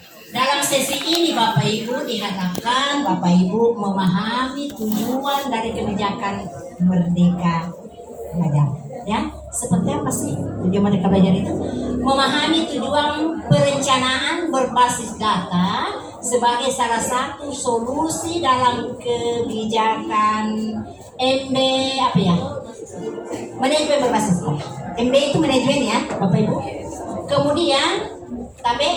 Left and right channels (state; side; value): identical; both; correlation 1.00